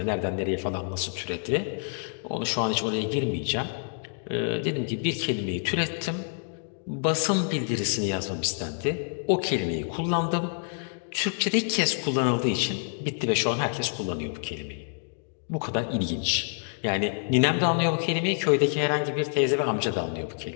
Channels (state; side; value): silent; right; 60 dB below the other